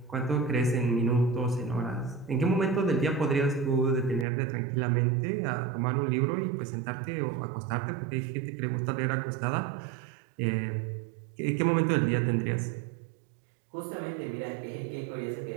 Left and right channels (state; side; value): drops out; left; at 4.2 s